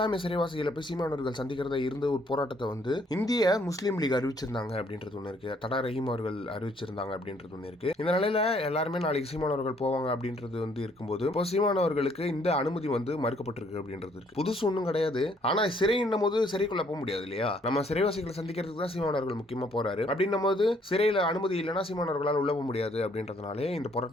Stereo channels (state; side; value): normal; both; correlation 0.65